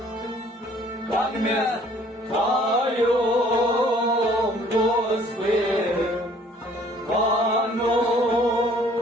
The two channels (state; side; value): normal; both; correlation 0.57